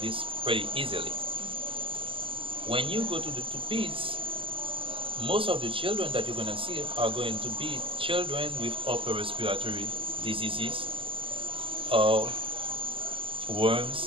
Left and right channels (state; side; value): late; left; 0.25 ms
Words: pretty easily. When you go to the peds, most of the children that you're going to see are going to be children with upper respiratory diseases or